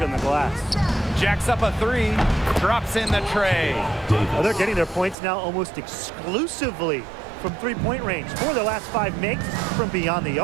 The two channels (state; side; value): drops out; left; at 5.2 s